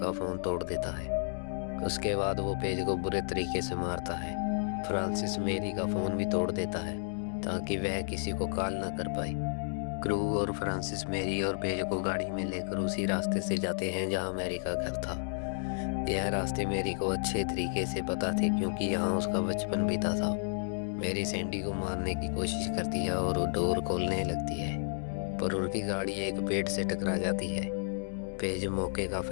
फोन तोड़ देता है। उसके बाद वो पेज को बुरे तरीके से मारता है। फ्रांसिस मैरी का फोन भी तोड़ देता है ताकि वह किसी को कॉल ना कर पाए। क्रू और फ्रांसिस मैरी और पेज को गाड़ी में लेकर उसी रास्ते से जाते हैं जहाँ मैरी का घर था। यह रास्ते मैरी को अच्छे तरीके से पता थे क्योंकि यहाँ उसका बचपन बीता था। मैरी सैंडी को मारने की कोशिश करती है और वो डोर खोलने लगती है पर उनकी गाड़ी एक पेड़ से टकरा जाती है। पेज मौके का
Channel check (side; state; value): right; silent; digital silence